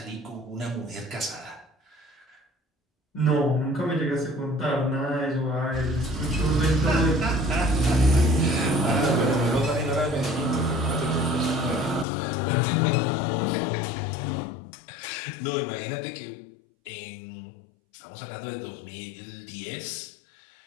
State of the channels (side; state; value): right; drops out; at 12.1 s